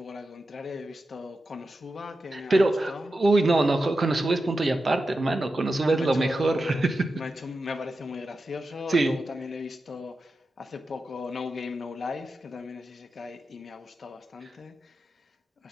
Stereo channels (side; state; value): both; normal; correlation 0.91